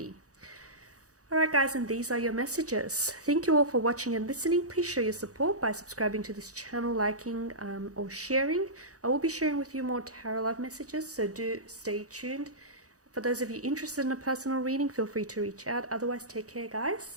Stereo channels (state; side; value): late; left; 0.66 ms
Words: Alright guys, and these are your messages. Thank you all for watching and listening. Please show your support by subscribing to this channel, liking or sharing. I will be sharing with you more tarot love messages, so do stay tuned. For those of you interested in a personal reading, feel free to reach out. Otherwise, take care